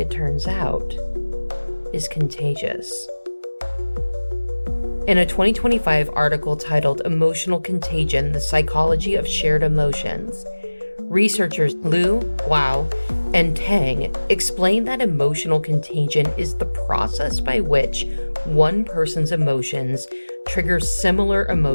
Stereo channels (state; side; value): inverted; both; correlation -1.00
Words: turns out, is contagious. In a 2025 article titled Emotional Contagion, The Psychology of Shared Emotions, researchers Liu, Guo, and Tang explain that emotional contagion is the process by which one person's emotions trigger similar